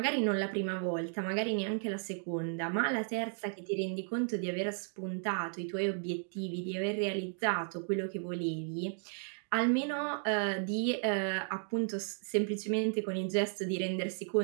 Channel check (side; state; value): left; silent; 55 dB below the other